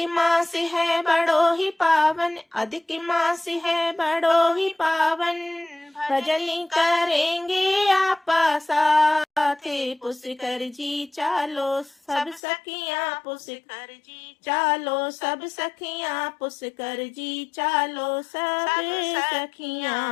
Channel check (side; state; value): right; drops out; at 12.4 s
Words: मास है बड़ो ही पावन, अधिक मास है बड़ो ही पावन, भजन करेंगे आपा साथ। पुष्कर जी चालो सब सखियां, पुष्कर जी चालो सब सखियां, पुष्कर जी चालो सब